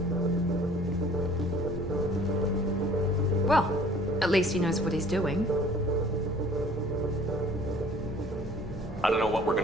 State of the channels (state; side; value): normal; both; correlation 0.52